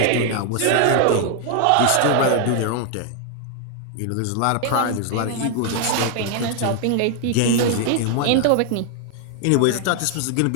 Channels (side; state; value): both; different; correlation 0.00